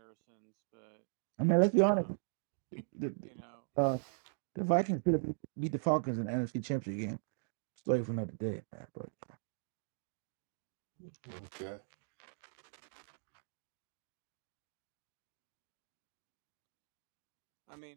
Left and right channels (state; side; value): silent; left; digital silence